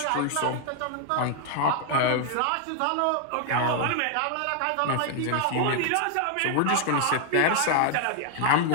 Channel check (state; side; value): different; both; correlation 0.00